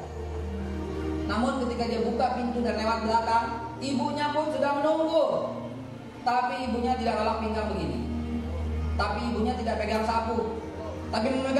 Namun ketika dia buka pintu dan lewat belakang, ibunya pun sudah menunggu. Tapi ibunya tidak lelap pinggang begini. Tapi ibunya tidak pegang sapu, tapi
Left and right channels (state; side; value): identical; both; correlation 1.00